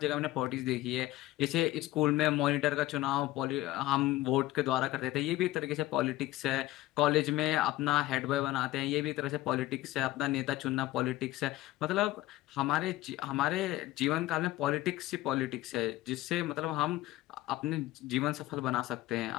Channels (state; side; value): quieter; right; 16.7 dB